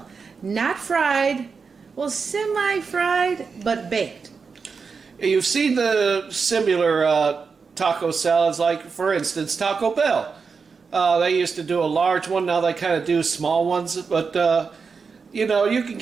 Not fried, well, semi-fried, but baked. You've seen the similar taco salads, like, for instance, Taco Bell. They used to do a large one, now they kind of do small ones, but... you know, you can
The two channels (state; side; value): quieter; left; 5.2 dB